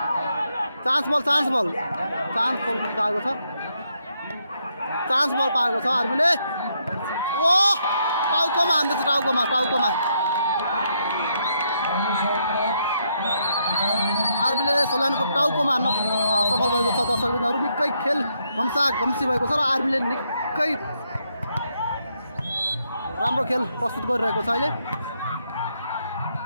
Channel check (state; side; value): inverted; both; correlation -0.77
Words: चान्स बल पाएको छ। चान्स बल पाएको छ आर्मीले। टाउकोमा हान्दैछ। टाउकोमा आर्मीले सल्यानको टाउकोमा हान्न सफल भएको छ। दर्शकबिन्दुहरू निकै खेल घम्सी भएको छ र आर्मीले निकै राम्रो खेल प्रस्तुत गरिरहेको छ अहिले।